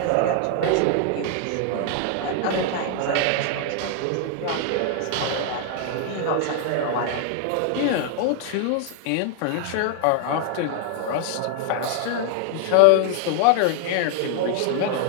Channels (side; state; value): both; different; correlation 0.00